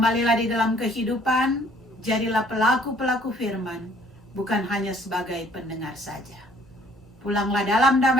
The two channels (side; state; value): both; normal; correlation 0.59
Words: di dalam kehidupan, jadilah pelaku-pelaku firman, bukan hanya sebagai pendengar saja. Pulanglah dalam